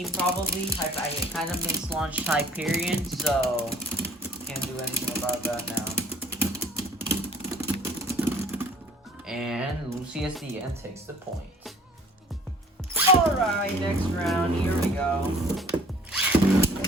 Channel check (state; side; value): normal; both; correlation 0.53